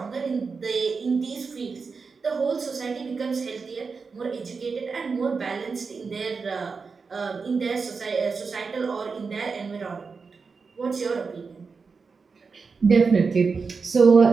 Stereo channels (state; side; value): quieter; left; 4.9 dB